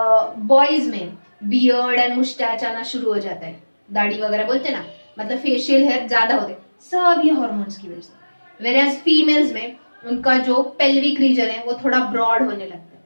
boys में बियर्ड एंड मुस्टैच आना शुरू हो जाता है, दाढ़ी वगैरह बोलते हैं ना, मतलब फेशियल हेयर ज्यादा होते हैं, सब ये हार्मोन्स की वजह से। वेराज फीमेल्स में उनका जो पेल्विक रीजन है वो थोड़ा ब्रॉड होने लगता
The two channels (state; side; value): inverted; both; correlation -1.00